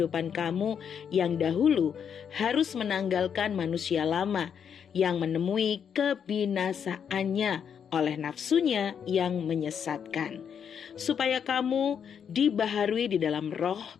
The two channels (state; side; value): quieter; right; 7.7 dB